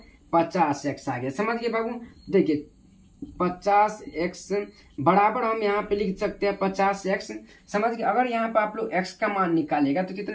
50 एक्स आ गया। समझ गए बाबू, देखिए 50 एक्स बराबर हम यहाँ पे लिख सकते हैं 50 एक्स। समझ गए, अगर यहाँ पे आप लोग एक्स का मान निकालेगा तो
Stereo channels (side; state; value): both; identical; correlation 1.00